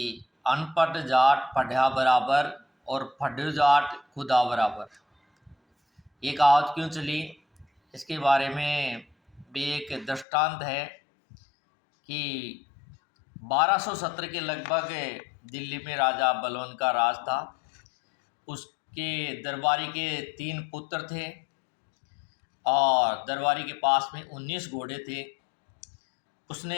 अनपढ़ जाट पढ़ा बराबर और पढ़ो जाट खुदा बराबर। ये कहावत क्यों चली, इसके बारे में भी एक दृष्टांत है कि 1270 के लगभग दिल्ली में राजा बलवन का राज था। उसके दरबारी के 3 पुत्र थे और दरबारी के पास में 19 घोड़े थे।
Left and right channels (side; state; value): right; drops out; at 10.2 s